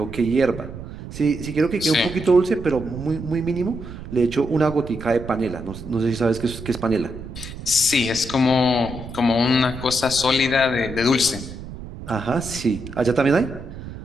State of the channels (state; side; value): noise; right; rumble, 11 dB below the sound